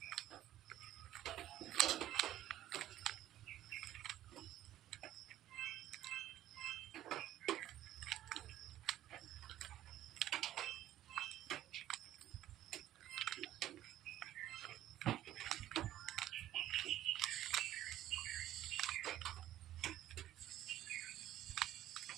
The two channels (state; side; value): quieter; left; 13.2 dB